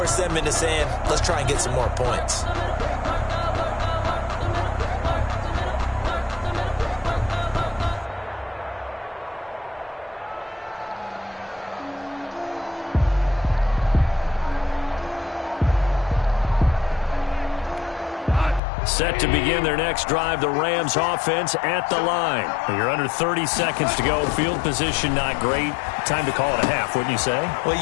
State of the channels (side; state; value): right; drops out; at 18.6 s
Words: them into saying, let's try and get some more points. Set to begin their next drive, the Rams offense at the line. You're under 30 seconds to go. Field position not great. Time to call it a half, wouldn't you say? Well,